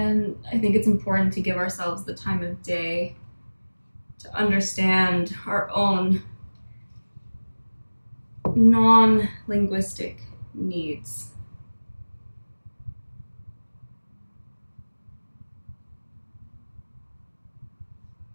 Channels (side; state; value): both; inverted; correlation -1.00